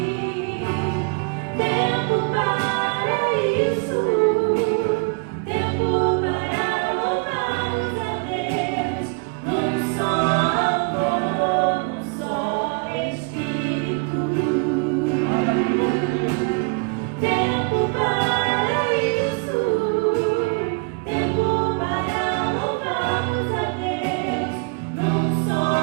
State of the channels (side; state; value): left; quieter; 33.0 dB